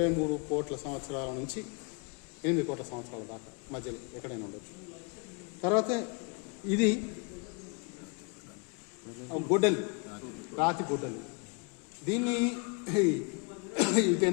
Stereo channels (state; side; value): quieter; right; 34.0 dB